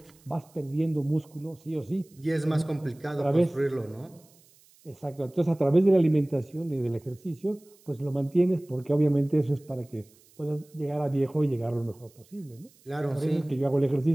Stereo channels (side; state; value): right; noise; hiss, 29 dB below the sound